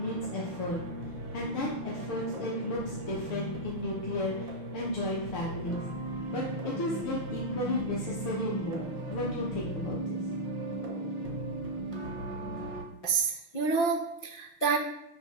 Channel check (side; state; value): right; late; 5.9 ms